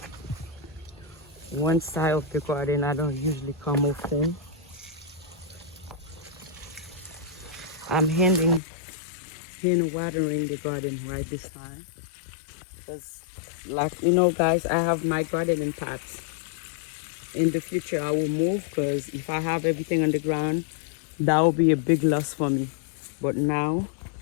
one side of the garden. I don't usually come often. I'm hand watering the garden right this time. Because like guys, I have my garden in pots. In the future I will move because if I have everything on the ground, that will be a big loss for me. But now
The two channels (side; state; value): right; drops out; at 8.6 s